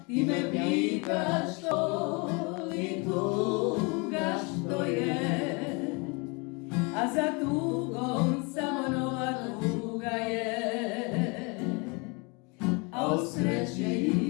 Ti me pitaš što li tuga što je, a za tugom samo nova tuga je. A o sreći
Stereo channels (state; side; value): quieter; right; 30.4 dB